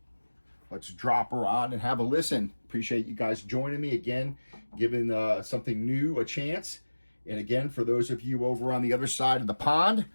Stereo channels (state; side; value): inverted; both; correlation -1.00